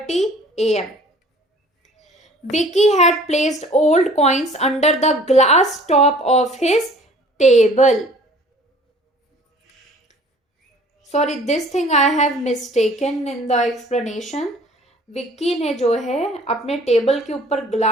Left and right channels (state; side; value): normal; both; correlation 0.51